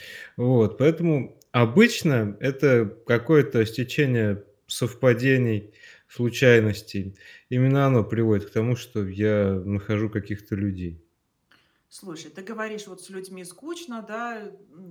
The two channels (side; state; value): both; identical; correlation 1.00